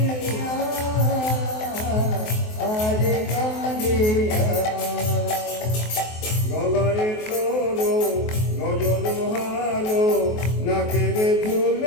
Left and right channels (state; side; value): late; right; 23 ms